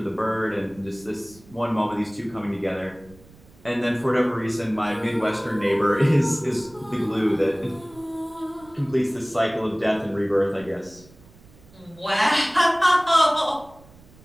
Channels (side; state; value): right; noise; rumble, 25 dB below the sound